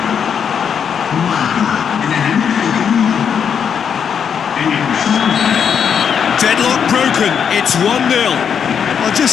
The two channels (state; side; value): quieter; right; 7.4 dB